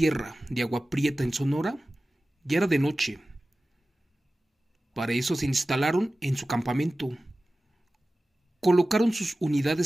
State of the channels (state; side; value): normal; both; correlation 0.96